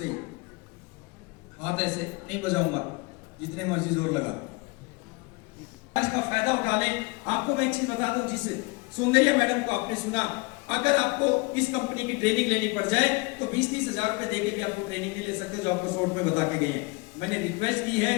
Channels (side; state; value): right; quieter; 26.8 dB